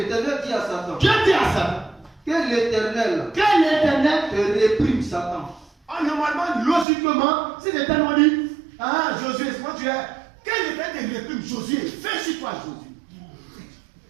dit à Satan. Dieu dit à Satan. Que l'Éternel te réprime Satan. Normalement, logiquement, si l'Éternel dit, Josué, c'est moi tu es. Que l'Éternel te réprime Josué, fais sur toi Josué.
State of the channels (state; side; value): drops out; left; at 6.9 s